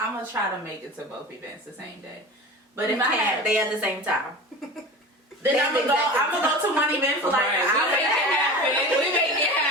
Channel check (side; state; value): both; normal; correlation 0.33